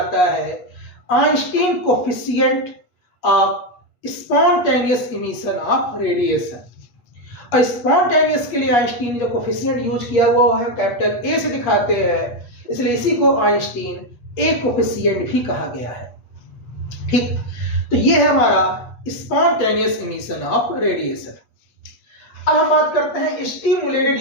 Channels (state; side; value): late; right; 8.4 ms